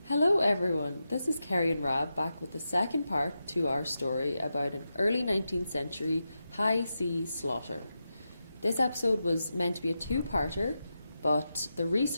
Hello everyone, this is Kerry and Rab back with the second part to our story about an early 19th century high sea slaughter. This episode was meant to be a 2-parter, but the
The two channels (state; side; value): inverted; both; correlation -0.89